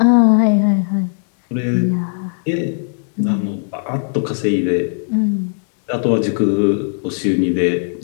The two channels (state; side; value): silent; right; digital silence